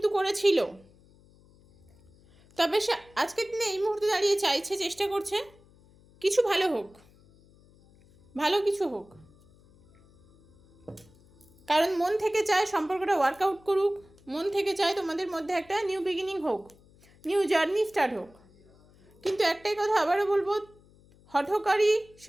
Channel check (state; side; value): noise; left; hum, 28 dB below the sound